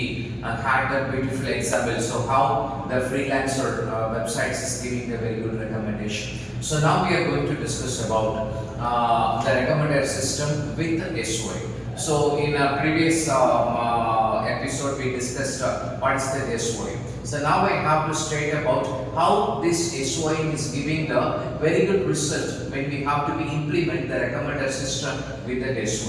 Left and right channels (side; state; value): both; identical; correlation 1.00